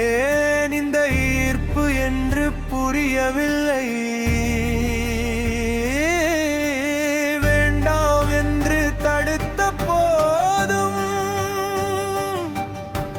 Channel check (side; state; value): both; identical; correlation 1.00